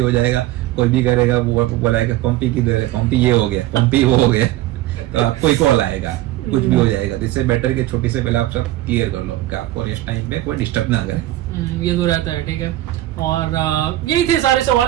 जाएगा, कोई भी करेगा, वो बोलाएगा पंपी की दे, पंपी ये हो गया, पंपी वो हो गया, तो आपको ही कॉल आएगा, कुछ भी हो जाएगा। तो इससे बेटर कि छोटी से पहले आप सब क्लियर कर लो कि आपको रेस्ट टाइम पे कोई डिस्टर्ब ना करे। ये तो रहता है, ठीक है। और यही थे सारे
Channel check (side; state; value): left; quieter; 15.7 dB